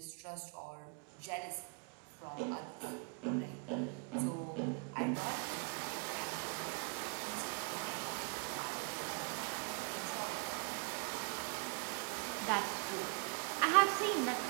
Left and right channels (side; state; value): left; quieter; 37.3 dB